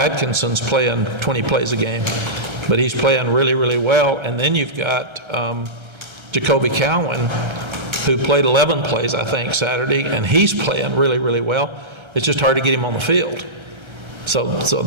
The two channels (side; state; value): left; late; 1.3 ms